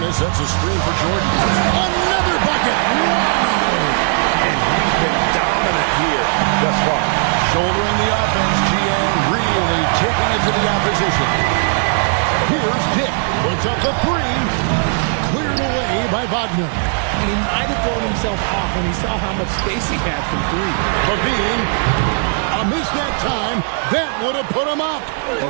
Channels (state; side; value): silent; left; 55 dB below the other